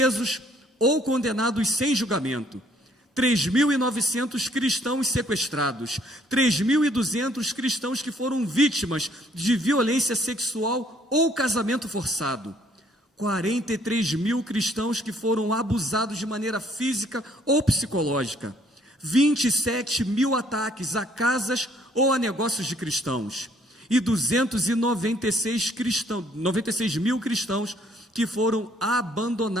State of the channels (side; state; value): both; normal; correlation 0.63